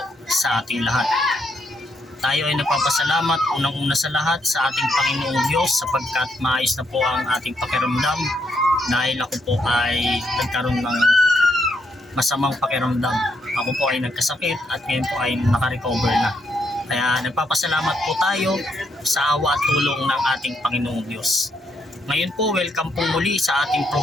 sa ating lahat. Tayo ay nagpapasalamat unang-una sa lahat sa ating Panginoong Diyos sapagkat maayos na po ang ating pakiramdam dahil ako po ay nagkaroon ng masamang pakiramdam. Ako po ay nagkasakit at ngayon po ay nakarecover na. Kaya nagpapasalamat po tayo sa awa at tulong ng ating Panginoong Diyos. Ngayon po, welcome po muli sa ating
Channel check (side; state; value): both; normal; correlation 0.76